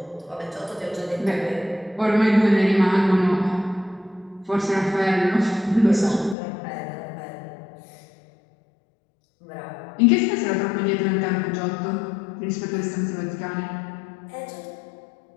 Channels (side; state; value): right; drops out; at 6.4 s